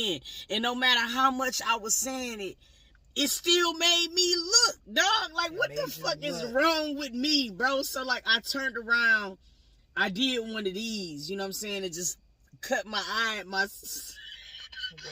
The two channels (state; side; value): identical; both; correlation 1.00